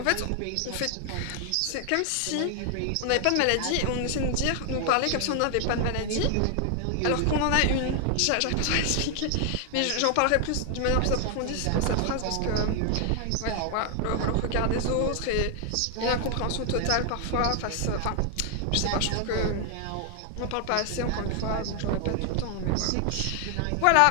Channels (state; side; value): different; both; correlation 0.00